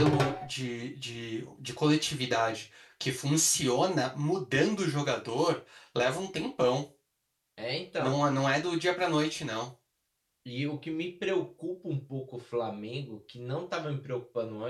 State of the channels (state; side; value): identical; both; correlation 1.00